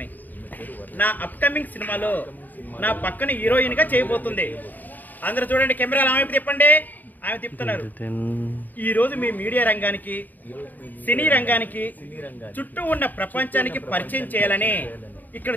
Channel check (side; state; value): right; late; 0.086 ms